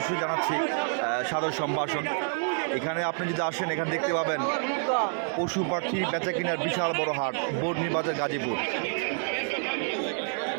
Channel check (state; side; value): silent; left; 59 dB below the other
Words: জানাচ্ছি সাদর সম্ভাষণ। এখানে আপনি যদি আসেন, এখানে দেখতে পাবেন পশু পাখি বেচা কেনার বিশাল বড় হাট বর্মি বাজার গাজীপুর।